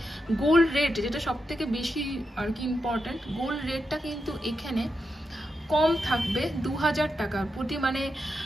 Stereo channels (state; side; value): normal; both; correlation 0.86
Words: গোল্ড রেট, যেটা সব থেকে বেশি আর কি ইম্পর্টেন্ট, গোল্ড রেটটা কিন্তু এখানে কম থাকবে 2000 টাকার প্রতি। মানে